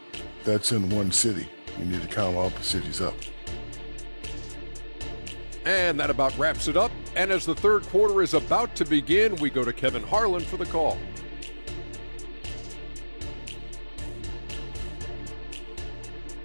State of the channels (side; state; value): both; inverted; correlation -1.00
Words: That's in one city. You need to count all the cities up. And that about wraps it up. And as the third quarter is about to begin, we go to Kevin Harlan for the call.